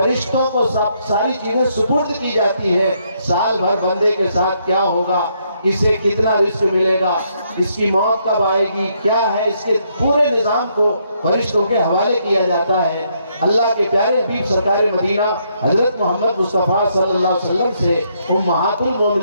کو ساری چیزیں سپرد کی جاتی ہے۔ سال بھر بندے کے ساتھ کیا ہوگا، اسے کتنا رزق ملے گا، اس کی موت کب آئے گی، کیا ہے، اس کے پورے نظام کو فرشتوں کے حوالے کیا جاتا ہے۔ اللہ کے پیارے حبیب سرکار مدینہ حضرت محمد مصطفیٰ صلی اللہ علیہ وسلم سے امہات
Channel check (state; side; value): inverted; both; correlation -0.74